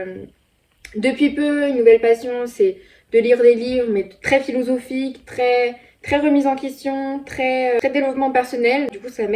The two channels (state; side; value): identical; both; correlation 1.00